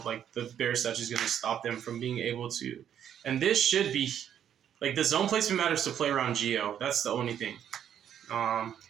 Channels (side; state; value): left; quieter; 9.5 dB